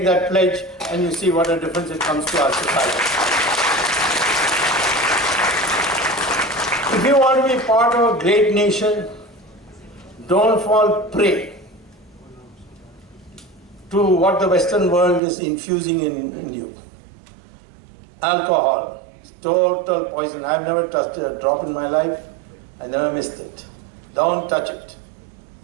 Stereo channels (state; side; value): drops out; left; at 15.2 s